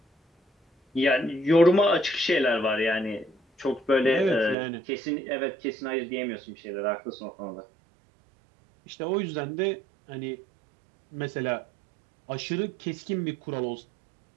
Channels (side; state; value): left; drops out; at 4.5 s